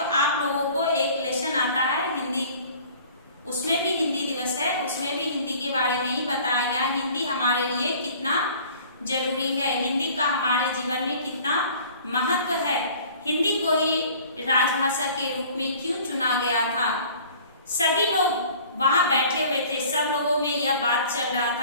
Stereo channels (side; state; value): both; inverted; correlation -0.49